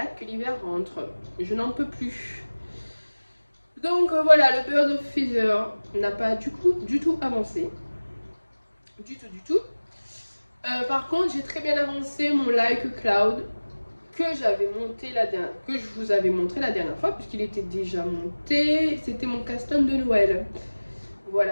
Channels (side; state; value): both; inverted; correlation -1.00